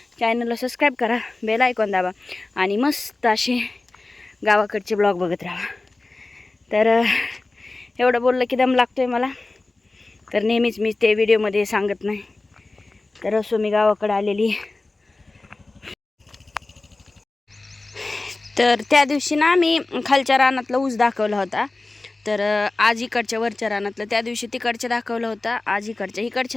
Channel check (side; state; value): right; quieter; 3.2 dB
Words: चॅनलला सबस्क्राईब करा, बेल आयकॉन दाबा आणि मस्त असे गावाकडचे ब्लॉग बघत राहा. तर एवढं बोललं की दम लागतोय मला. तर नेहमीच मी ते व्हिडिओमध्ये सांगत नाही. तर असो मी गावाकडे आलेली. तर त्या दिवशी ना मी खालच्या रानातला ऊस दाखवला होता. तर आज इकडच्या वरच्या रानातलं, त्या दिवशी तिकडच्या दाखवलं होतं, आज